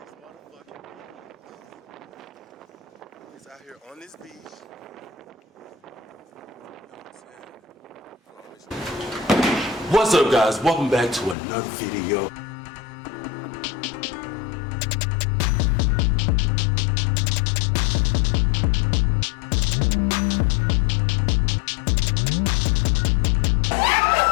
motherfucking beach. He's out here on this beach. You know what I'm saying? What's up, guys? Welcome back to another video.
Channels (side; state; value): right; drops out; at 11.4 s